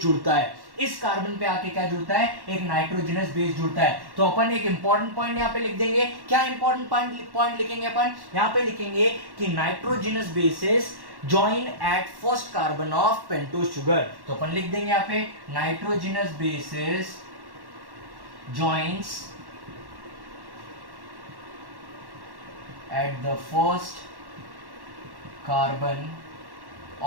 जुड़ता है। इस कार्बन पे आके क्या जुड़ता है? एक नाइट्रोजनस बेस जुड़ता है। तो अपन एक इंपॉर्टेंट पॉइंट यहाँ पे लिख देंगे। क्या इंपॉर्टेंट पॉइंट लिखेंगे अपन? यहाँ पे लिखेंगे कि nitrogenous bases join at first carbon of pentose sugar। तो अपन लिख देंगे यहाँ पे nitrogenous bases joins at the first carbon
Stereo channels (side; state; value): left; late; 1.1 ms